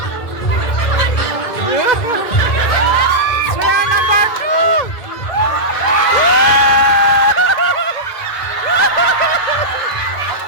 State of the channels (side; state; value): right; late; 1.9 ms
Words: Swear number 2.